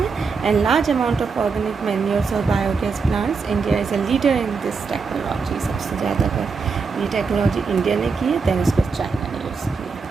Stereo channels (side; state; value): left; quieter; 5.0 dB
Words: And large amount of organic manures और biogas plants, India is a leader in this technology. सबसे ज़्यादा अगर ये टेक्नोलॉजी इंडिया ने की है दैन उसको चाइना ने यूज़